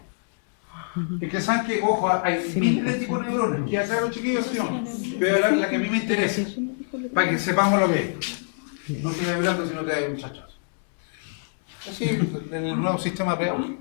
Es que saben que, ojo, hay miles de tipos de neuronas. ¿Qué hacen los chiquillos? ¿Sí o no? Yo voy a hablar la que a mí me interesa, para que sepamos lo que es. No sigas vibrando si no te da un chachazo. Así, el nuevo sistema de audio.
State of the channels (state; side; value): silent; right; digital silence